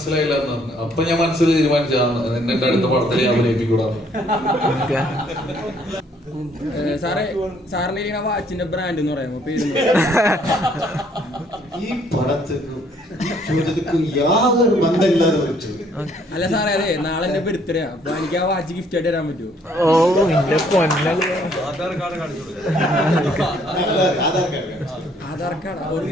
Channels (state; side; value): normal; both; correlation 0.64